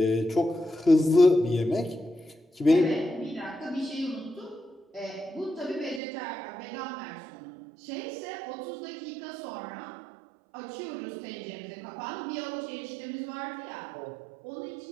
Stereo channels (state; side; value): drops out; left; at 6.0 s